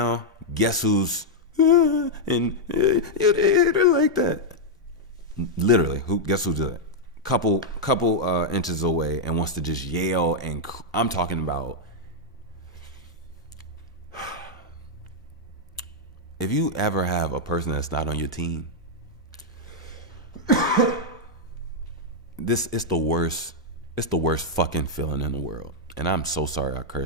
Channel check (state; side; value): normal; both; correlation -0.03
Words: guess who's and you hit her like that? Literally, guess who's that? Couple inches away and wants to just yell and I'm talking about. If you ever have a person that's not on your team, it's the worst fucking feeling in the world. And I'm so sorry I